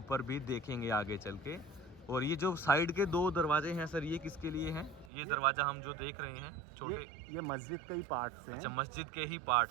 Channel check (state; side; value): drops out; left; at 5.1 s